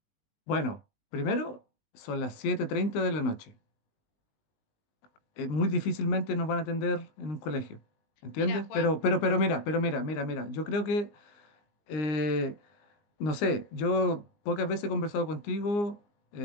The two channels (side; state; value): right; late; 19 ms